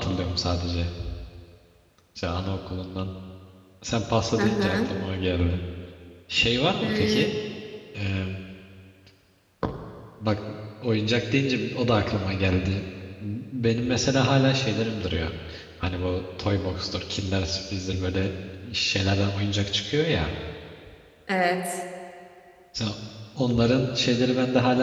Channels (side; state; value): both; identical; correlation 1.00